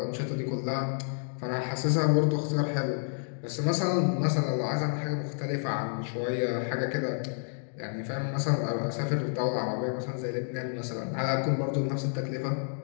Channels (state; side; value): silent; right; digital silence